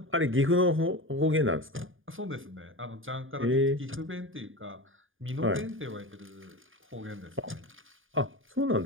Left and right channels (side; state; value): left; late; 0.58 ms